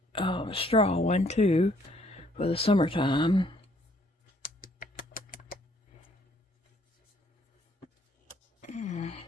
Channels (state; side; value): normal; both; correlation 0.64